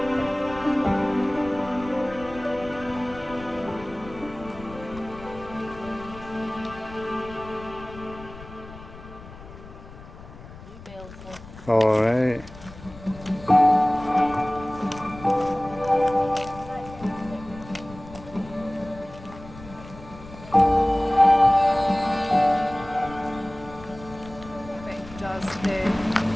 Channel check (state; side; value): noise; left; rumble, 17 dB below the sound